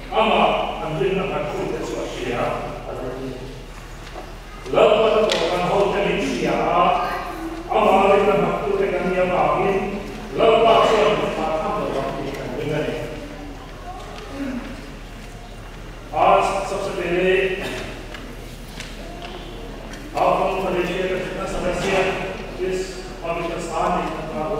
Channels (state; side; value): identical; both; correlation 1.00